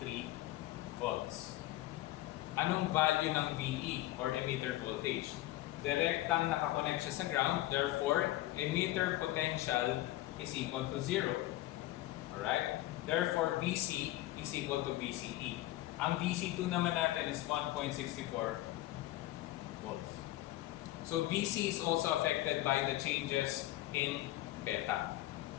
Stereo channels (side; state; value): right; quieter; 16.1 dB